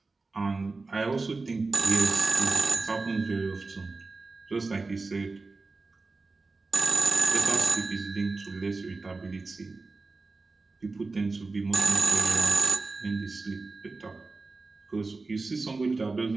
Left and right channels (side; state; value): left; quieter; 3.8 dB